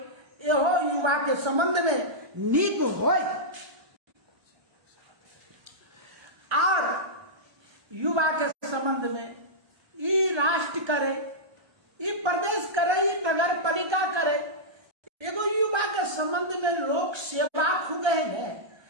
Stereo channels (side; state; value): left; late; 1.3 ms